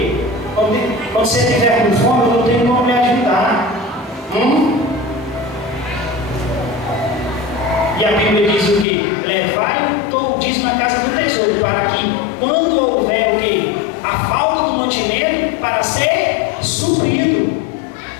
Quando você estiver com fome, eu não tenho como me ajudar. E a Bíblia diz o quê? Levai o dízimo na casa do tesouro, para que quando houver o quê? A falta do mantimento, para ser suprido.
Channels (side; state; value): right; drops out; at 8.8 s